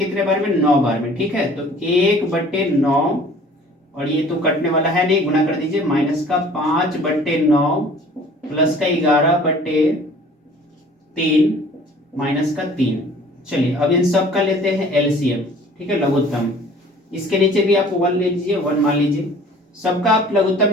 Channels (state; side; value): normal; both; correlation 0.50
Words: बार में, 9 बार में, ठीक है। तो 1/9 और ये तो कटने वाला है नहीं, गुना कर दीजिए, माइनस का 5/9 प्लस का 11/3 माइनस का 3। चलिए अब इन सब का लेते हैं एलसीएम, ठीक है, लघुत्तम। इसके नीचे भी आप 1 ले लीजिए, 1 मान लीजिए। सबका आप लघुत्तम